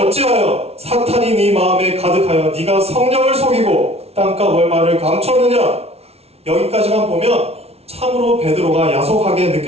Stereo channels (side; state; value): left; late; 0.30 ms